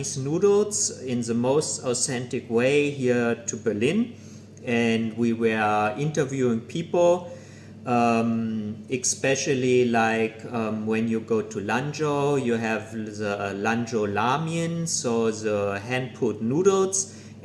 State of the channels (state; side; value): identical; both; correlation 1.00